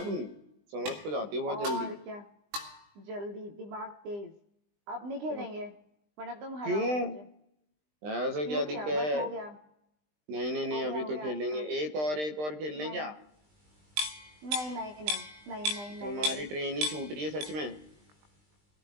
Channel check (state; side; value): late; left; 20 ms